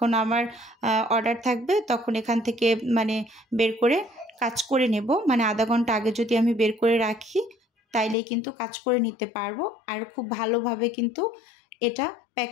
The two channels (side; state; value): right; drops out; at 8.2 s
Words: আমার অর্ডার থাকবে তখন এখান থেকে মানে বের করে কাজ করে নেব। মানে আধা ঘন্টা আগে যদি আমি বের করে রাখি তাইলেই কিন্তু কাজ করে নিতে পারবো। আর খুব ভালোভাবে কিন্তু এটা